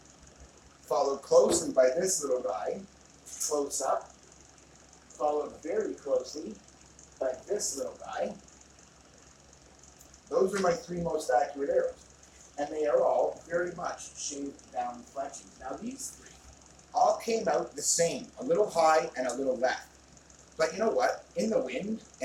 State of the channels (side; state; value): both; identical; correlation 1.00